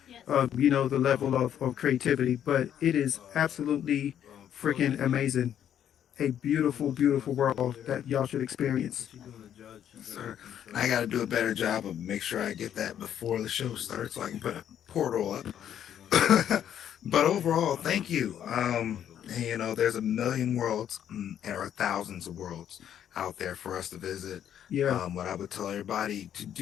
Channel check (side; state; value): right; quieter; 9.9 dB